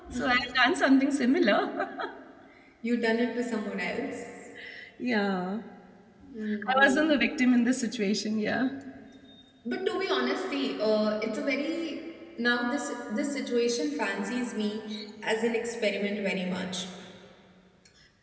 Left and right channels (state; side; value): identical; both; correlation 1.00